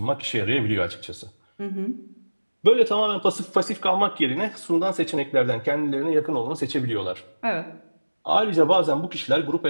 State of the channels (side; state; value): both; inverted; correlation -1.00